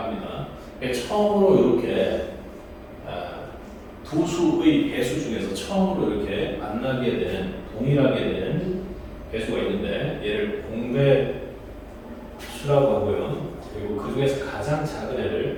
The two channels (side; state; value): both; identical; correlation 1.00